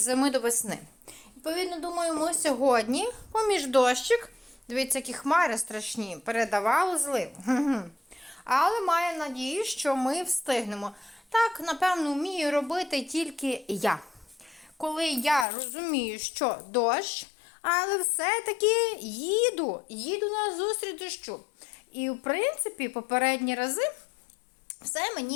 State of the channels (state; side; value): drops out; right; at 15.5 s